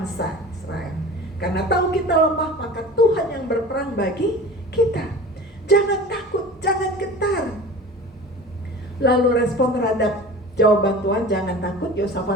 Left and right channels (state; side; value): normal; both; correlation 0.38